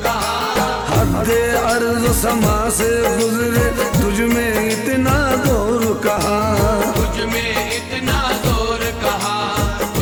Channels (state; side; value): identical; both; correlation 1.00